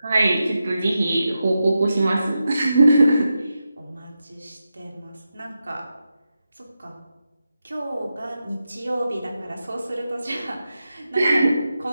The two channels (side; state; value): both; inverted; correlation -0.89